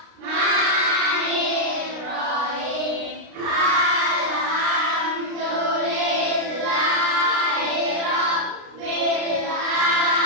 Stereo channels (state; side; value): late; left; 33 ms